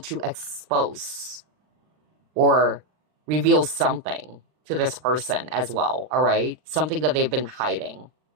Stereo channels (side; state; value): left; late; 39 ms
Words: expose or reveal something to this person as well, all right? Something that they've been hiding.